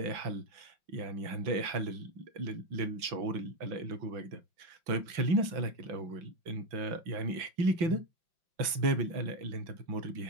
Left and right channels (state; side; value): late; left; 6.0 ms